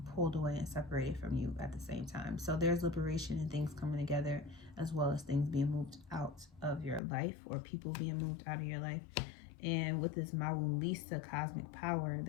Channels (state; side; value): drops out; right; at 7.0 s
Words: pulled away and separated from you at the same time. So there's liberation and things coming together, as well as things being moved out of your life or people being moved out of your life. And with this Mawulisa cosmic power,